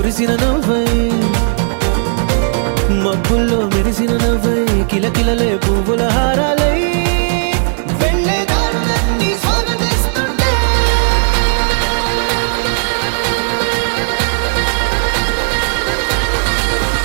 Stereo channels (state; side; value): silent; left; 70 dB below the other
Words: నవ్వై మబ్బుల్లో మెరిసిన నవ్వై కిలకిలలే పువ్వుల హారాలై వెళ్ళే దారులన్నీ స్వాగతిస్తుంటే